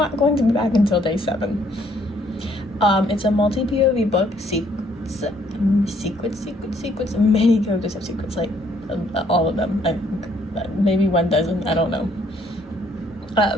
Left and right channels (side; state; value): both; normal; correlation 0.66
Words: going to be back until day 7. It's a multi-POV book. Secrets. Many characters have secrets, like all of them. Maybe one doesn't, I don't know.